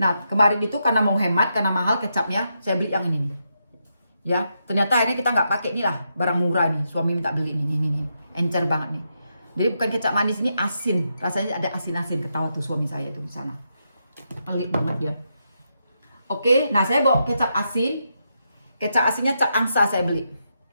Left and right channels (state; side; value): inverted; both; correlation -0.83